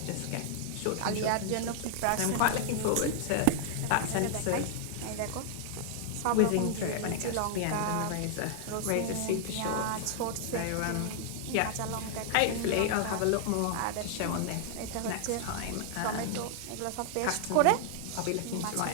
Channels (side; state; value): both; different; correlation 0.00